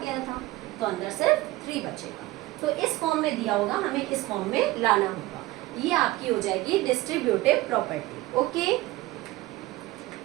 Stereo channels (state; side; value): quieter; left; 18.6 dB